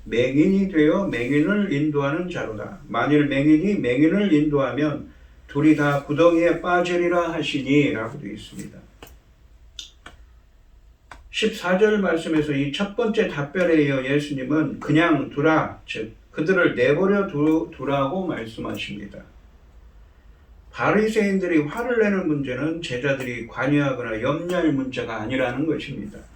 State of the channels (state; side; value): identical; both; correlation 1.00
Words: 맹인이 되어 맹인을 인도하는 자로다. 만일 맹인이 맹인을 인도하면 둘이 다 구덩이에 빠지리라 하시니 라고 되어 있습니다. 14절 말씀에서 이 첫 번째 답변에 이어 예수님은 그냥 두라, 즉 그들을 내버려 두라고 말씀하십니다. 바리새인들이 화를 내는 문제는 제자들이 관여하거나 염려할 문제가 아니라는 것입니다.